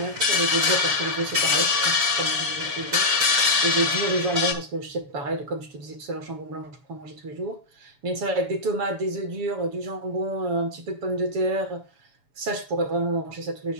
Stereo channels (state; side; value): late; left; 7.0 ms